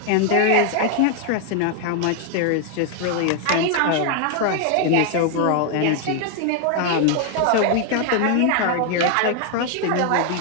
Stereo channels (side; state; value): both; different; correlation 0.01